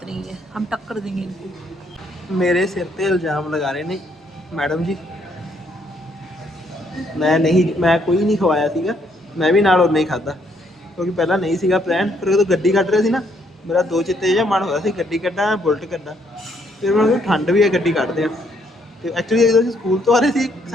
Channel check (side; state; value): both; normal; correlation 0.70